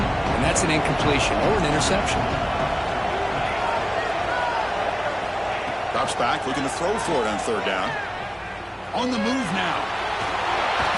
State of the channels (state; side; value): identical; both; correlation 1.00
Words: and that's an incompletion or an interception. Drops back, looking to throw for it on third down. On the move now.